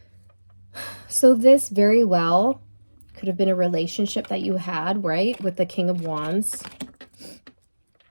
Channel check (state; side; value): inverted; both; correlation -1.00